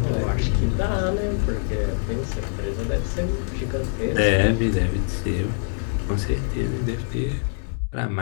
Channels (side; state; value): right; silent; digital silence